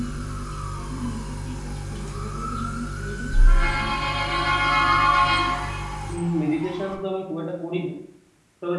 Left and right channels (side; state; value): both; identical; correlation 1.00